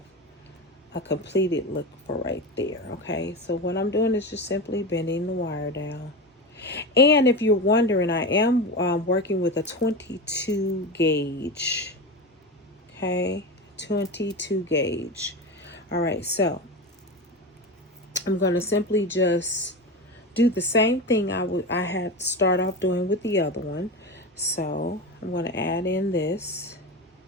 a completed look for right there. Okay, so what I'm doing is just simply bending the wire down. And if you're wondering, I am working with a 22 gauge. Okay, 22 gauge. All right, so I'm going to simply just do the same thing I had start off doing with the other one. So I'm going to add in this,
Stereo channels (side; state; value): both; normal; correlation 0.22